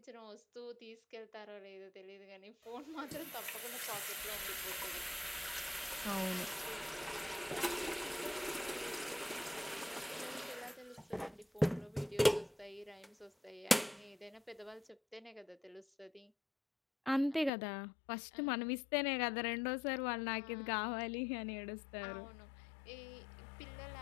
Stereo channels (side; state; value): right; drops out; at 17.5 s